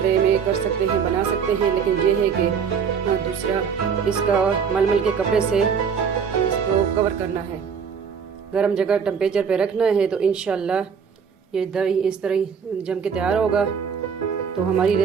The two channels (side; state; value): left; quieter; 6.6 dB